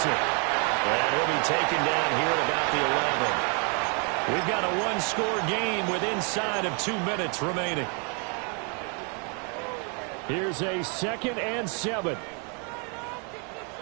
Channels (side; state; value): left; quieter; 36.7 dB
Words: And he'll be taken down here at about the 11. We've got a 1-score game with inside of 2 minutes remaining. Here's a 2nd and 7.